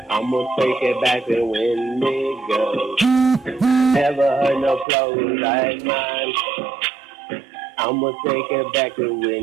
I'ma take it back and win, nigga. Never heard no flows like mine. I'ma take it back to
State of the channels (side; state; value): left; drops out; at 4.9 s